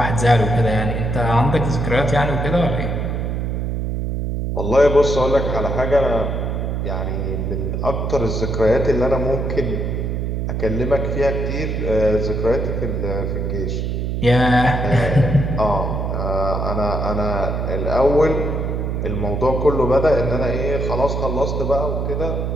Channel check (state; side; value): noise; right; hum, 1 dB below the sound